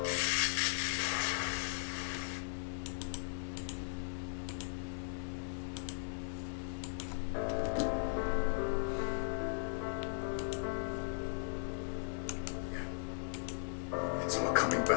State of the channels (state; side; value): silent; right; digital silence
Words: It's all coming